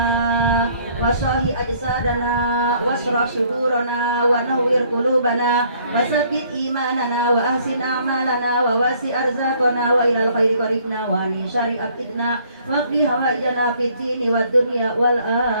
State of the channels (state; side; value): inverted; both; correlation -0.62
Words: wasahi ajsadana wasrah sudurana wa nawwir qulubana wasabbit imanana wa ahsin a'malana wa wasi arzaqana wa ilal khairi qaribna wa li syari afidna wa qdi hawaijana fid dini wad dunya wal